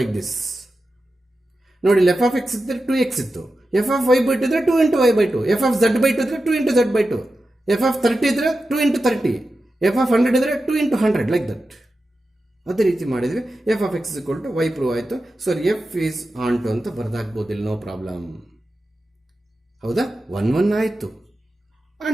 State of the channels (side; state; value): both; normal; correlation 0.91